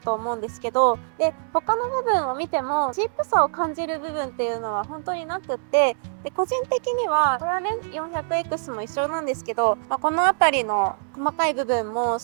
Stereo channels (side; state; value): left; silent; 63 dB below the other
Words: 思うんですけど、で他の部分を見てもチープさを感じる部分っていうのは本当になくって、で個人的にはこれはね 400X も一緒なんですけど、この辺りの細かい部分も